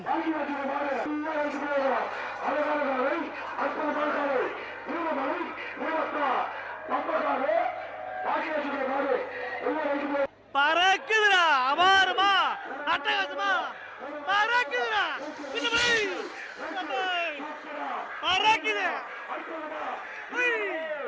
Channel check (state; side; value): identical; both; correlation 1.00